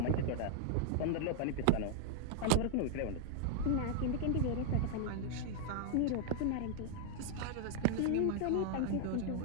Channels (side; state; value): both; different; correlation 0.00